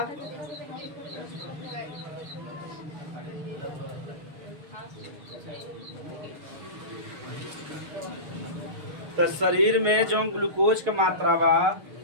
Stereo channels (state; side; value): late; left; 6.4 ms